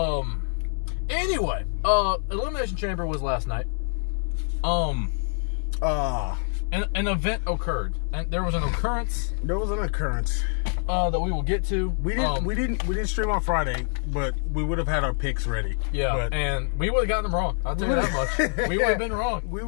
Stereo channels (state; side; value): silent; right; 61 dB below the other